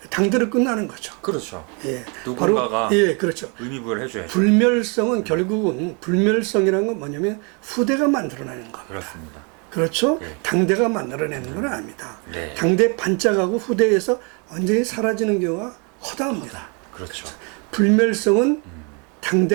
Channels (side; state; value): left; quieter; 34.2 dB